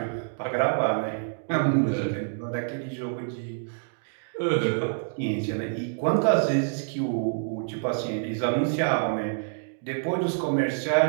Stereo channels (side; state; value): left; silent; digital silence